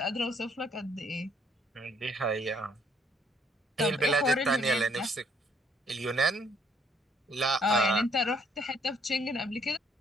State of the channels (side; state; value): both; normal; correlation 0.65